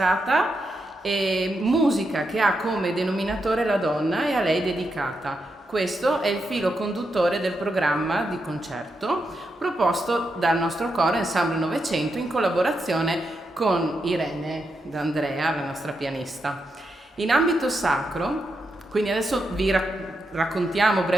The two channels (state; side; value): normal; both; correlation 0.84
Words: e musica che ha come denominatore la donna e a lei dedicata. Questo è il filo conduttore del programma di concerto proposto dal nostro coro Ensemble Novecento in collaborazione con Irene D'Andrea, la nostra pianista. In ambito sacro, quindi adesso vi raccontiamo